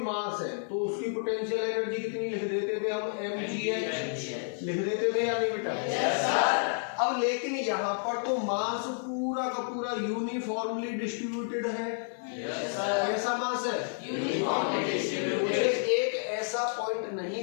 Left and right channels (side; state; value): right; silent; digital silence